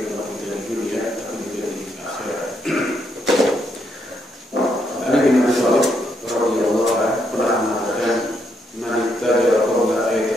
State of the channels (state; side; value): normal; both; correlation 0.77